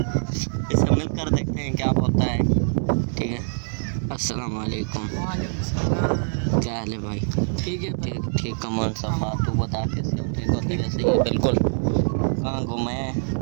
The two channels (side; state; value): left; silent; 62 dB below the other